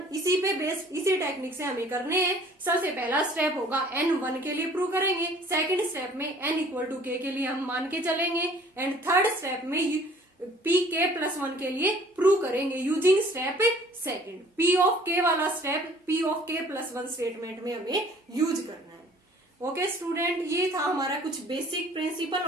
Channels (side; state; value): both; normal; correlation 0.54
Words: इसी पे बेस्ड, इसी टेक्निक से हमें करने हैं। सबसे पहला स्टेप होगा n1 के लिए प्रूव करेंगे, सेकंड स्टेप में n इक्वल टू k के लिए हम मान के चलेंगे, एंड थर्ड स्टेप में Pk प्लस 1 के लिए प्रूव करेंगे using step second. P of k वाला step P of k plus 1 statement में हमें यूज करना है। ओके स्टूडेंट, ये था हमारा कुछ basic principle